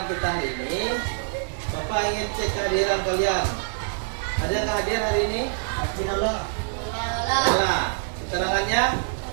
kita hari ini, Bapak ingin cek kehadiran kalian. Ada yang hadir hari ini? Alhamdulillah. Nah, keterangannya?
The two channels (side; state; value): left; silent; digital silence